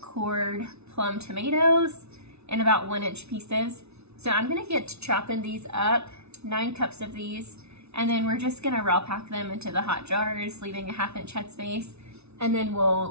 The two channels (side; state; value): left; late; 0.81 ms